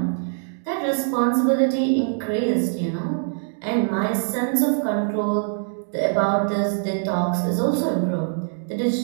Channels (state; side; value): silent; left; digital silence